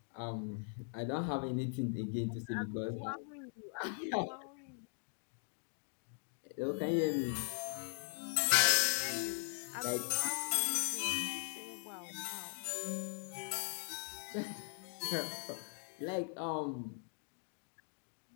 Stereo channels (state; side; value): silent; right; 51 dB below the other